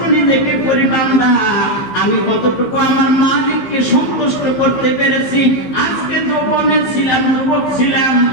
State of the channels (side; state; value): right; late; 15 ms